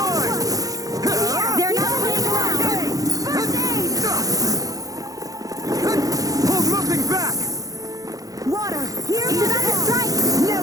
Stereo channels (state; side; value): late; left; 0.17 ms